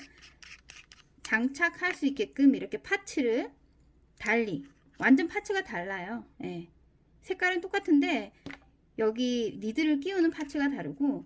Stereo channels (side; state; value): both; identical; correlation 1.00